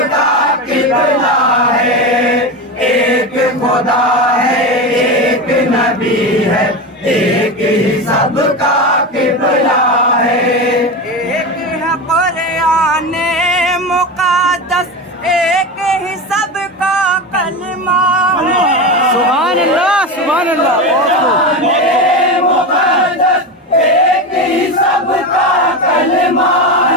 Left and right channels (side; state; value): both; normal; correlation 0.20